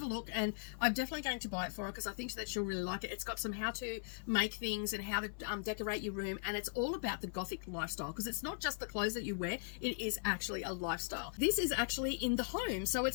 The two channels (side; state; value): right; silent; 52 dB below the other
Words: a look, and I'm definitely going to buy it for her because I think that she'll really like it. It's got some how to make things and how to decorate your room, and it's all about the Gothic lifestyle, because it's not just the clothes that you wear, it is actually a lifestyle. This is actually in the home, so